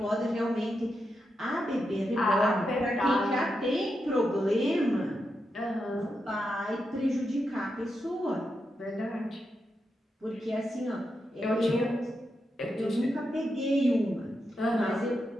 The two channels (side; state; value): both; normal; correlation 0.86